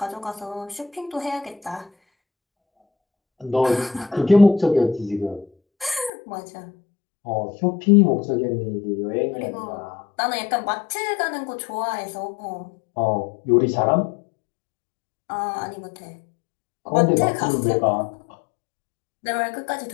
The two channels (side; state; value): right; drops out; at 6.1 s